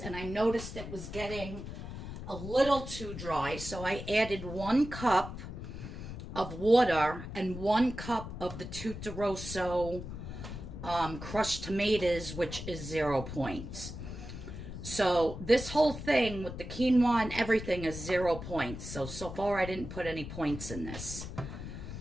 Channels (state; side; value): noise; left; rumble, 9 dB below the sound